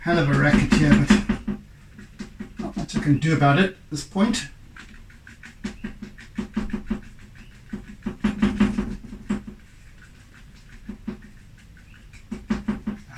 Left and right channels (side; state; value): both; identical; correlation 1.00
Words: of a racket here, but not much I can do about it at this point.